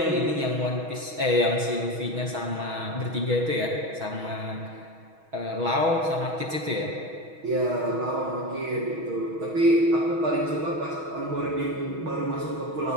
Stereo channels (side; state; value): left; late; 6.3 ms